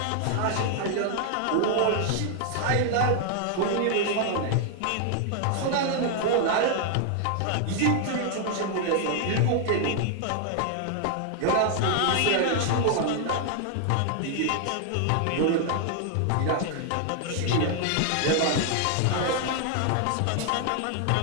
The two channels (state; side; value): different; both; correlation 0.00